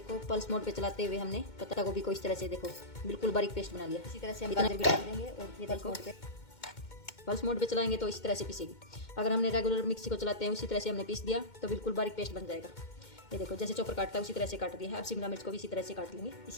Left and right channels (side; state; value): right; late; 2.1 ms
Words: पल्स मोड पे चलाते हुए हमने पत्ता गोभी को इस तरह से देखो बिल्कुल बारीक पेस्ट बना लिया। इसी तरह से हम गाजर भी डाल देंगे और ये पल्स मोड पे चलाएंगे तो इस तरह से पीसेगी। अगर हमने रेगुलर मिक्सी को चलाते हैं उसी तरह से हमने पीस दिया तो बिल्कुल बारीक पेस्ट बन जाएगा। ये देखो जैसे चॉपर काटता है उसी तरह से काट दिया है। अब शिमला मिर्च को भी इसी तरह से काट लेंगे।